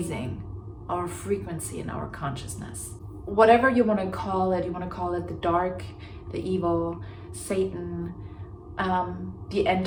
our frequency and our consciousness. Whatever you want to call it the dark, the evil, Satan, the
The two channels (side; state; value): both; identical; correlation 1.00